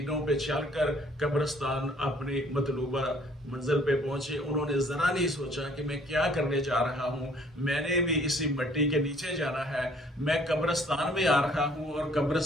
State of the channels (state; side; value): normal; both; correlation 0.59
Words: पे चलकर कब्रिस्तान अपनी मतलूबा मंजिल पे पहुंचे। उन्होंने जरा नहीं सोचा कि मैं क्या करने जा रहा हूं, मैंने भी इसी मिट्टी के नीचे जाना है, मैं कब्रिस्तान में आ रहा हूं और